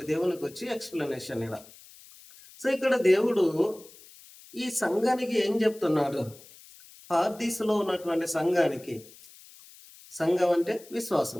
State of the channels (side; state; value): left; noise; hiss, 22 dB below the sound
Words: దేవునికి వచ్చి ఎక్స్ప్లెనేషన్ ఇలా. సో ఇక్కడ దేవుడు ఈ సంఘానికి ఏం చెప్తున్నాడు? పార్దీసులో ఉన్నటువంటి సంఘం అంటే